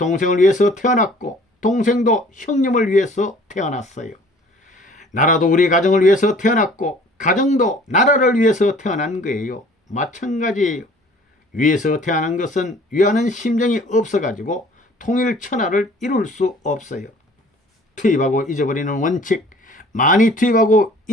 위해서 태어났고 동생도 형님을 위해서 태어났어요. 나라도 우리 가정을 위해서 태어났고 가정도 나라를 위해서 태어난 거예요. 마찬가지예요. 위에서 태어난 것은 위하는 심정이 없어가지고 통일천하를 이룰 수 없어요. 투입하고 잊어버리는 원칙, 많이 투입하고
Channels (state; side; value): normal; both; correlation 0.52